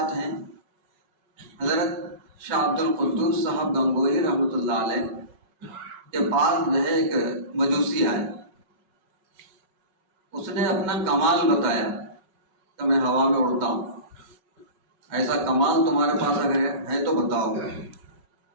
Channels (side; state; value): left; late; 5.4 ms